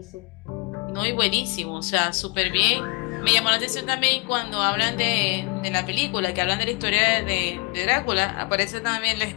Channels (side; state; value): right; quieter; 29.0 dB